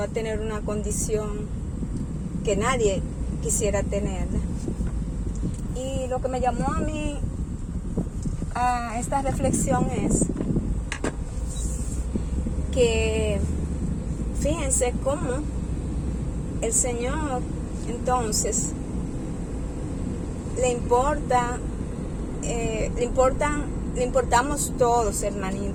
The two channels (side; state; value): both; identical; correlation 1.00